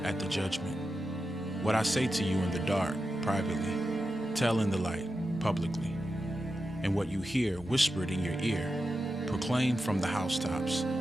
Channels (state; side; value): normal; both; correlation 0.90